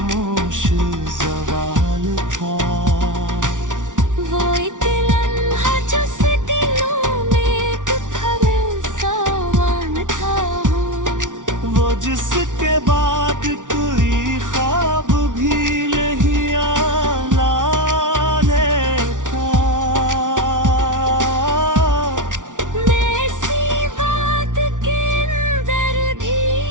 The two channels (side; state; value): left; late; 0.87 ms